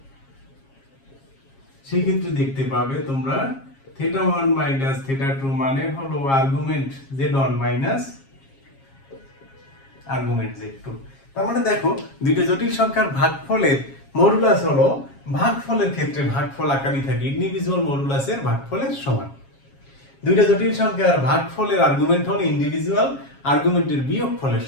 সেক্ষেত্রে দেখতে পাবে তোমরা θ1 মাইনাস θ2 মানে হলো argument z1 minus argument z2। তার মানে দেখো, দুইটা জটিল সংখ্যার ভাগফলের মডুলাস হলো ভাগফলের ক্ষেত্রে ভাগফল আকারই থাকে ইন্ডিভিজুয়াল মডুলাসের ভাগফলের সমান। দুইটা জটিল সংখ্যার ভাগফলের আর্গুমেন্ট হলো ইন্ডিভিজুয়াল আর্গুমেন্টের বিয়োগফলের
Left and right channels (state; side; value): late; right; 7.4 ms